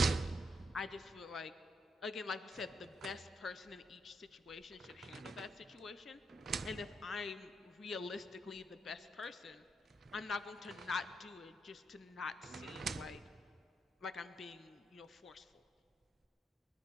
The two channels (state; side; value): normal; both; correlation 0.79